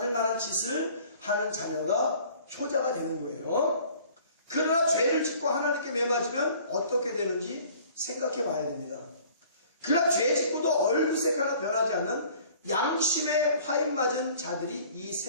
만한 짓을 하는 자녀가 효자가 되는 거예요. 그러나 죄를 짓고 하나님께 매 맞으면 어떻게 되는지 생각해 봐야 됩니다. 그러나 죄 짓고도 얼굴색 하나 변하지 않는 양심에 화인 맞은 자들이 이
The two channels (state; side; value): inverted; both; correlation -0.51